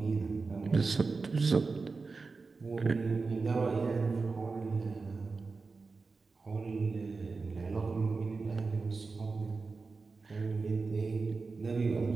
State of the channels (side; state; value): left; quieter; 4.2 dB